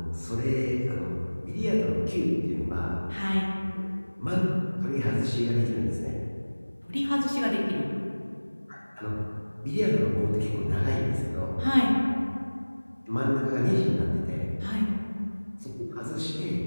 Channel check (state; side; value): inverted; both; correlation -1.00